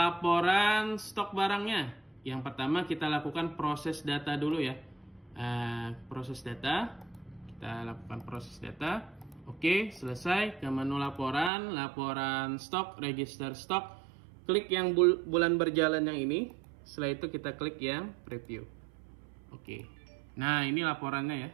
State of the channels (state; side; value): drops out; left; at 11.5 s